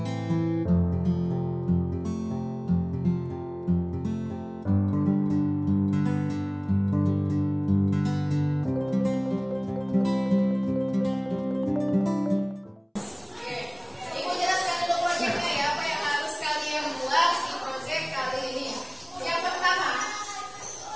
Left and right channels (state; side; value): identical; both; correlation 1.00